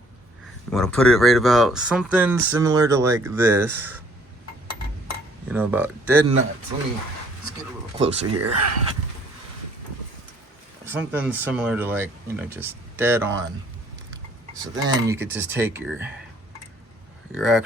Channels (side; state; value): both; normal; correlation 0.60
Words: you want to put it right about something similar to like this, about dead nuts. Let's get a little closer here. Something similar to just dead on. So then you could just take your